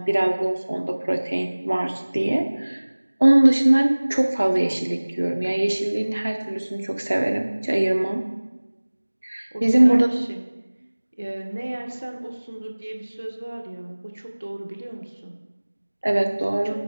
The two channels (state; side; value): inverted; both; correlation -1.00